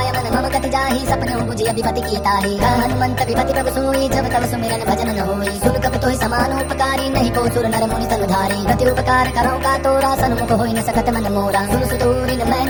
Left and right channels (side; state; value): both; identical; correlation 1.00